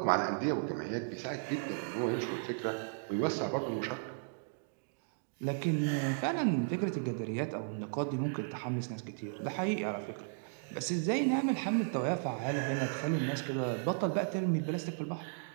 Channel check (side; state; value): left; silent; digital silence